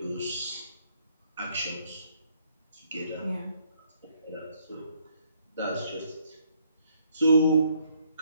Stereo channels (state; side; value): inverted; both; correlation -0.68